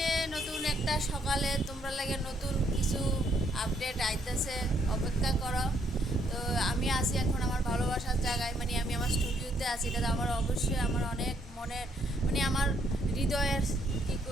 নতুন একটা সকালে তোমরা লাগে নতুন কিছু আপডেট আইতেছে, অপেক্ষা করো। তো আমি আছি এখন আমার ভালোবাসার জায়গায়, মানে আমি আমার স্টুডিওতে আছি। এটা আমার অবশ্যই আমার অনেক মনের, মানে আমার হৃদয়ের কী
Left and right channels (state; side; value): normal; both; correlation 0.70